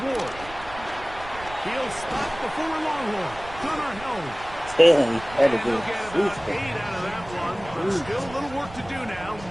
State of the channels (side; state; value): right; noise; rumble, 17 dB below the sound